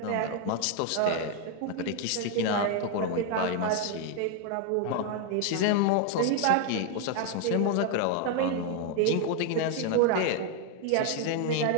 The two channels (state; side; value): different; both; correlation 0.01